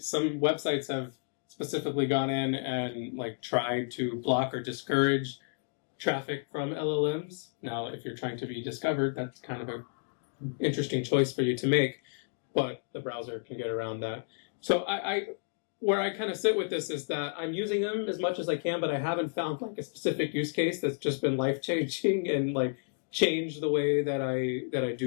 websites have specifically gone in and tried to block or discourage traffic from LLMs. Now, if you're trying to be discovered, that's kind of an interesting choice for you to make, but the browser can get around that. So where I kind of sit with this is that I'm using them as much as I can, but I haven't found a specific use case that's just been life-changing and change the way that I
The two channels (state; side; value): silent; right; digital silence